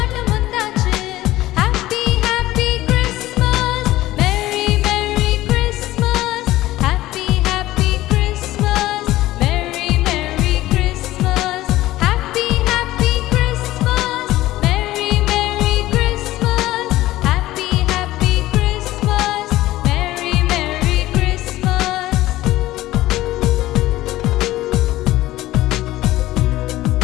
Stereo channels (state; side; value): quieter; right; 16.3 dB